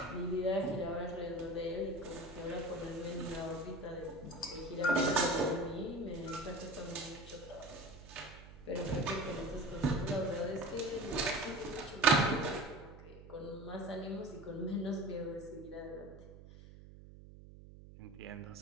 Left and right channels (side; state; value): right; noise; hum, 17 dB below the sound